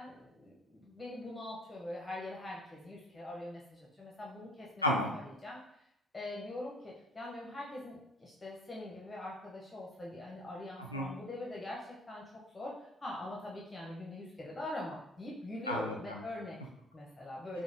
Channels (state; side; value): normal; both; correlation 0.47